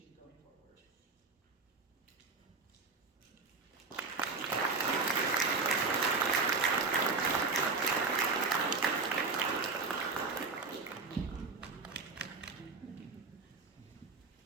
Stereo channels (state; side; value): quieter; left; 4.2 dB